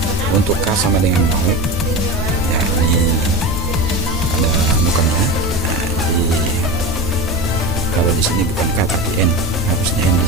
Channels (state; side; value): normal; both; correlation 0.25